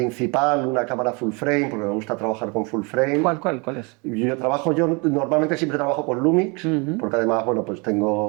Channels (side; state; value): left; quieter; 30.6 dB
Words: una cámara full frame, porque me gusta trabajar con full frame. ¿Cuál es? Yo normalmente siempre trabajo con Lumix, porque además, bueno, pues